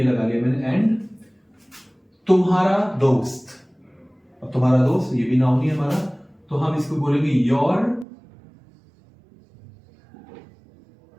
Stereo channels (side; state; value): left; drops out; at 8.1 s